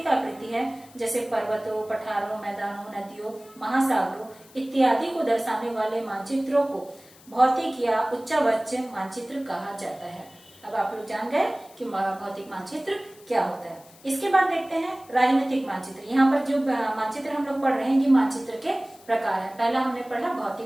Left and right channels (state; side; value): noise; left; hiss, 25 dB below the sound